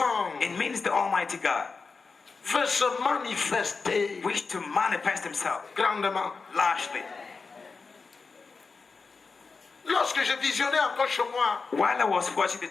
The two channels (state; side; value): quieter; right; 4.5 dB